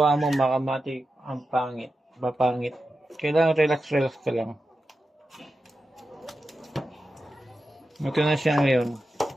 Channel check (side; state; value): both; normal; correlation 0.91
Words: mo mga kamatik, ang pangit, mapangit. Kailangan relax ka lang. Ito na siya ngayon.